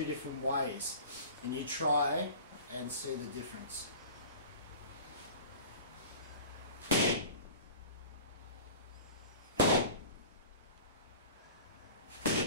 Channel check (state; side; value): inverted; both; correlation -0.40